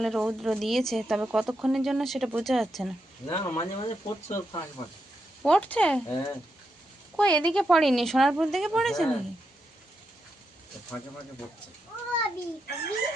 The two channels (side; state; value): both; normal; correlation 0.84